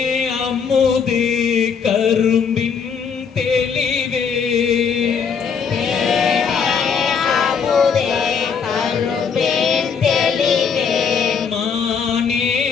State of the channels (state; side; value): quieter; right; 6.3 dB